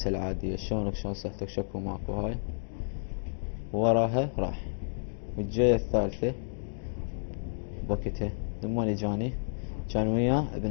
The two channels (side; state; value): right; silent; digital silence